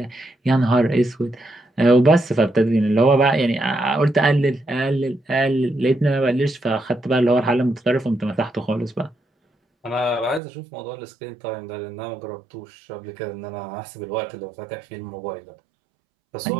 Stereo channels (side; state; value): left; drops out; at 10.4 s